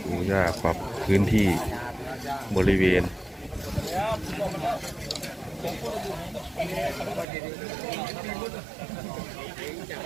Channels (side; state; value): left; drops out; at 7.2 s